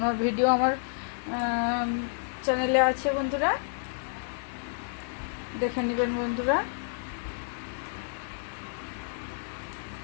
ভিডিও আমার চ্যানেলে আছে বন্ধুরা, দেখে নেবেন বন্ধুরা।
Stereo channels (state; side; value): silent; right; 58 dB below the other